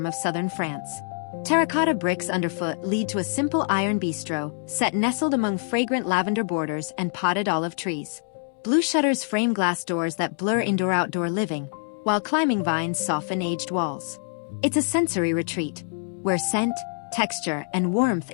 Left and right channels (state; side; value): silent; right; 62 dB below the other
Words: of southern France. Terracotta bricks underfoot lead to a simple iron bistro, set nestled among fragrant lavender borders and potted olive trees. Blue shutters frame glass doors that blur indoor-outdoor living, while climbing vines soften aged walls. It's a sensory retreat, where scent, texture, and warmth